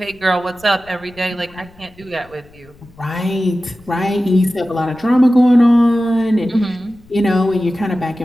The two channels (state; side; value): noise; left; rumble, 26 dB below the sound